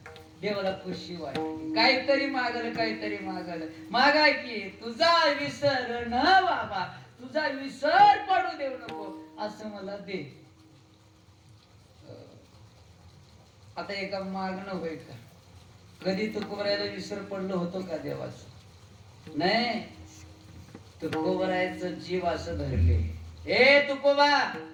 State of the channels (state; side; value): identical; both; correlation 1.00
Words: देवाला खुशी वाटली. काहीतरी मागल मागा की तुझा विसर न बाबा, तुझा विसर पडू देऊ नको असं मला दे. आता एका मागणं होईल का? कधी तुकोबरायला विसर पडलं होतो का देवाचं? नाही. तुकोबरायचं जीव असं धरले. ए तुकोबा,